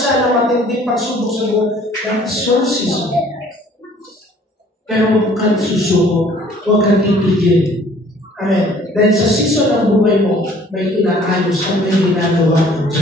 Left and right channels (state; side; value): normal; both; correlation 0.55